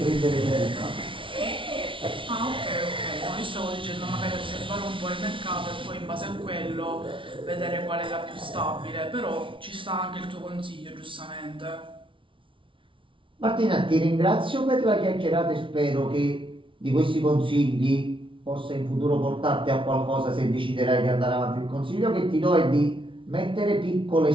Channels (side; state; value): left; late; 0.25 ms